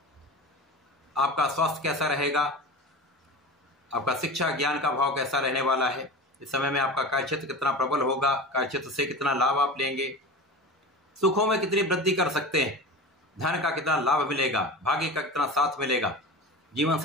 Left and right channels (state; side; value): normal; both; correlation 0.31